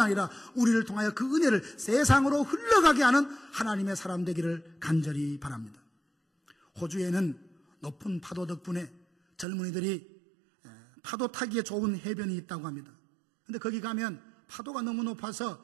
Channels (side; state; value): left; drops out; at 9.5 s